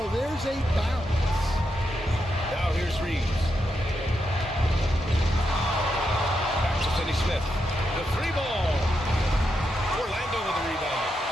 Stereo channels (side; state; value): both; normal; correlation 0.84